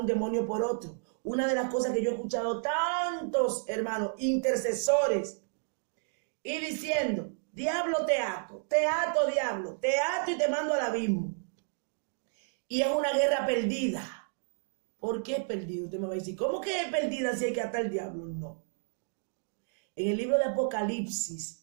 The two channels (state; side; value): silent; left; digital silence